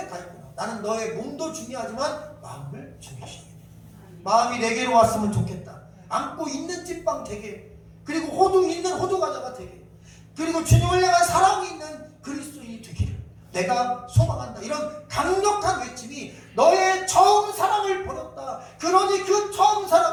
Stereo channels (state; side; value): identical; both; correlation 1.00